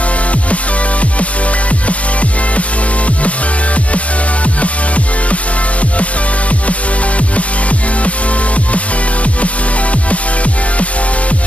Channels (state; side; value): late; right; 0.065 ms